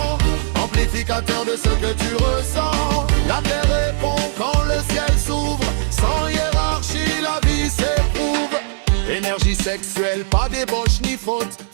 amplificateur de ce que tu ressens. La terre répond quand le ciel s'ouvre. Sans hiérarchie, la vie s'éprouve. Énergie sexuelle, pas débauche ni faute.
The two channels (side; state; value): left; silent; 60 dB below the other